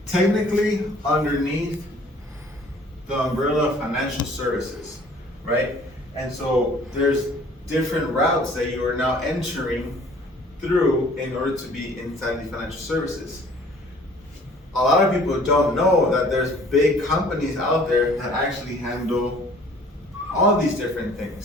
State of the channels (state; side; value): normal; both; correlation 0.53